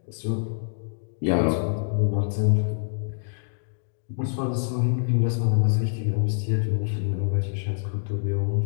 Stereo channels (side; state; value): right; silent; digital silence